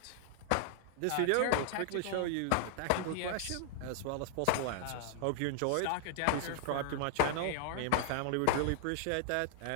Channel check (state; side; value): different; both; correlation 0.00